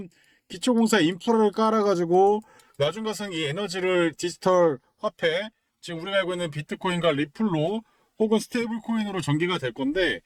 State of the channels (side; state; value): both; identical; correlation 1.00